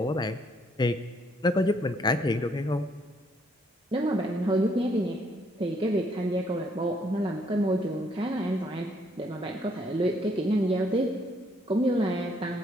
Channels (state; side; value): normal; both; correlation 0.69